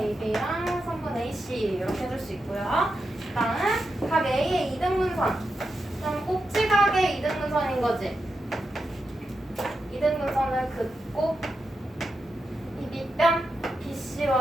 선분 AC 이렇게 해줄 수 있고요. 다음 각 A의 이등분선. 그럼 꼭지각의 이등분선인 거지. 이등분선을 긋고 이 밑변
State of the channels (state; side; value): normal; both; correlation 0.88